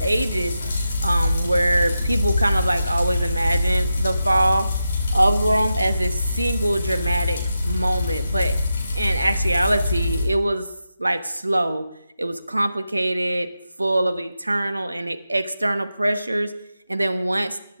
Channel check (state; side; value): inverted; both; correlation -0.89